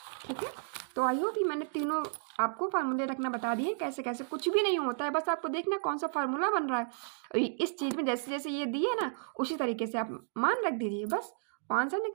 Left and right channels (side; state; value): left; silent; digital silence